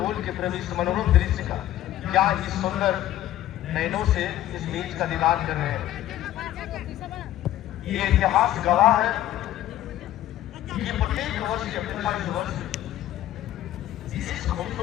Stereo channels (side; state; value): right; quieter; 13.3 dB